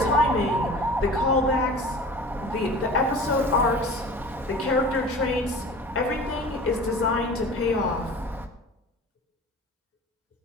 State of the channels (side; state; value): both; normal; correlation 0.39